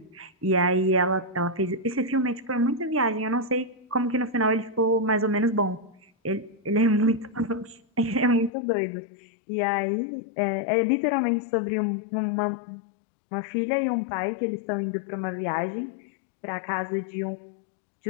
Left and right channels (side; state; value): right; drops out; at 8.5 s